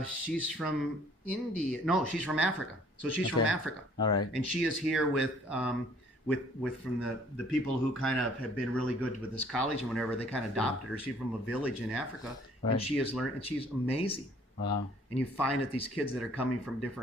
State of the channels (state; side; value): normal; both; correlation 0.58